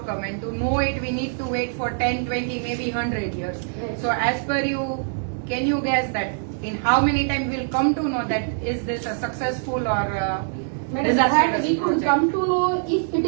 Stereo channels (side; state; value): left; silent; digital silence